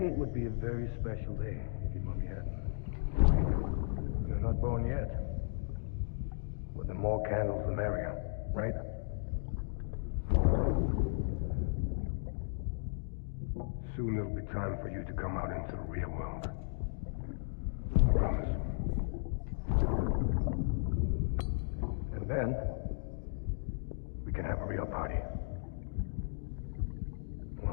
would be a very special day if your mommy hadn't. You're not born yet. But the more candles, the merrier, right? Soon it'll be time for you to come out into the real world. I promise. And then, we can have a real party.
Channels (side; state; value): right; silent; digital silence